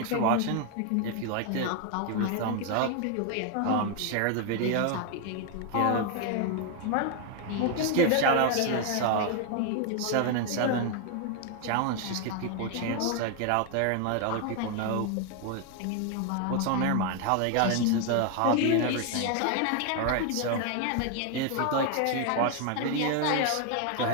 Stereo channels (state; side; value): different; both; correlation 0.01